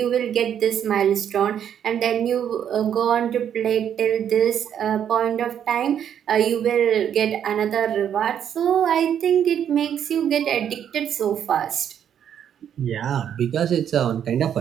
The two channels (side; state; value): left; quieter; 9.2 dB